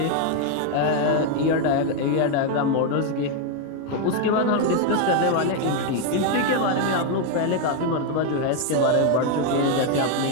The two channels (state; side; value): different; both; correlation 0.01